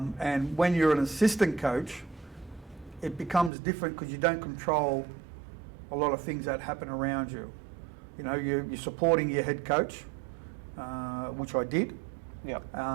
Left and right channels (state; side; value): drops out; left; at 3.5 s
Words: And when you're an assistant coach, it becomes different because you don't control a lot of things that happen around you. You know, you're supporting your head coach, which I did. Yeah.